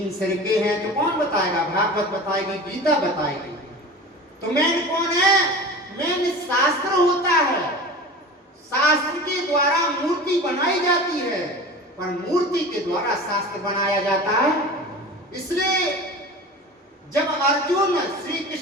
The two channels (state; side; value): normal; both; correlation 0.35